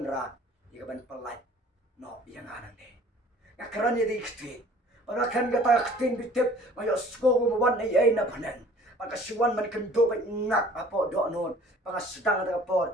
igaban palai no yang anan de ngakaran ni kitin para kan gata kitin bitip mayo sko mo wan ay na panan pagkasiwan man kendo ba ngak apo do non pangasdang ta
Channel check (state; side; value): normal; both; correlation 0.51